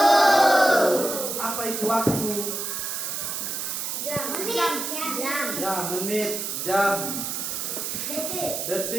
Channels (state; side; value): noise; right; hiss, 3 dB below the sound